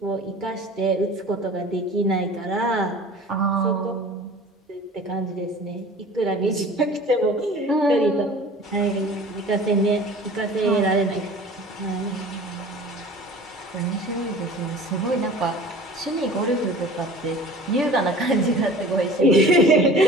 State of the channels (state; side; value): normal; both; correlation 0.43